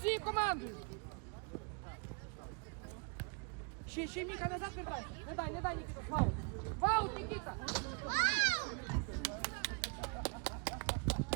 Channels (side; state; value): left; quieter; 36.5 dB